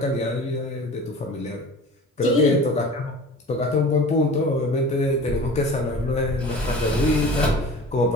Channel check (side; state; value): both; normal; correlation 0.40